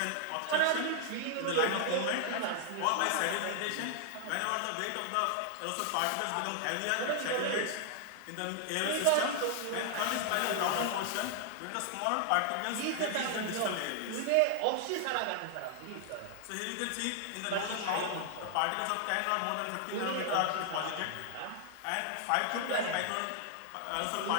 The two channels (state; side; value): different; both; correlation 0.00